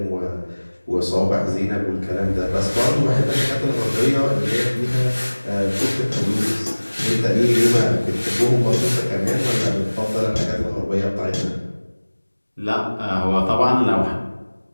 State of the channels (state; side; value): inverted; both; correlation -1.00